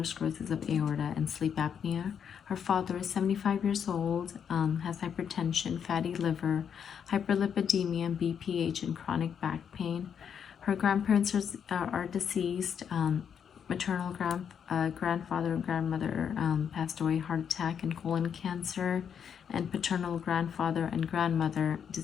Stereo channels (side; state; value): right; quieter; 7.7 dB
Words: sclerosis of aorta, and sleep apnea. Her father is 75 years old, has hypertension, fatty liver, hyperlipidemia, BPH, and chronic back pain. Her grandparents are deceased. Maternal grandfather and grandmother passed away, heart attack and colon cancer. And paternal grandfather and grandmother